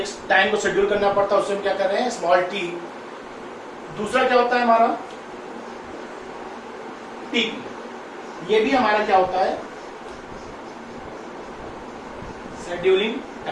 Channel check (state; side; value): identical; both; correlation 1.00